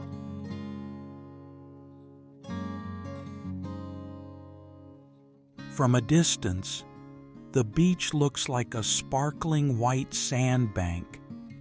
From a distance, The beach looks like a sparkling white sandbank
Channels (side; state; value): both; identical; correlation 1.00